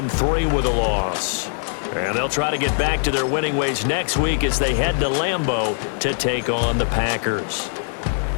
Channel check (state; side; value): silent; right; digital silence